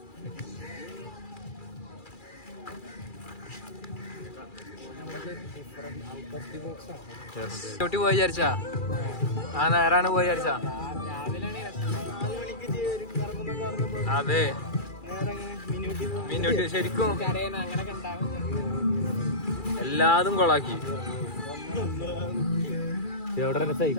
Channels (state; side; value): late; right; 2.4 ms